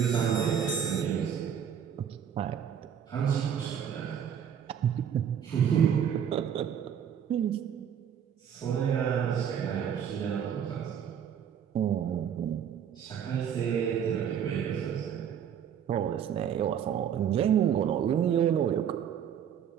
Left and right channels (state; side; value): quieter; left; 8.6 dB